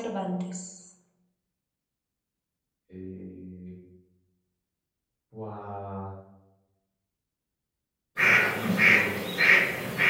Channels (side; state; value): both; identical; correlation 1.00